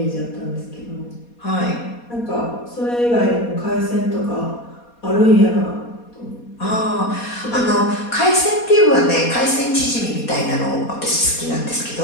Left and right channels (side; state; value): right; late; 4.2 ms